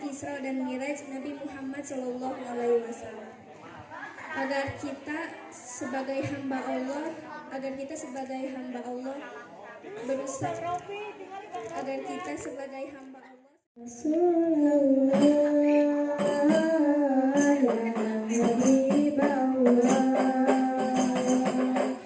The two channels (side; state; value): both; identical; correlation 1.00